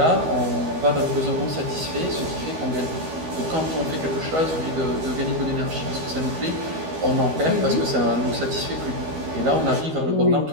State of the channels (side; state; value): left; late; 12 ms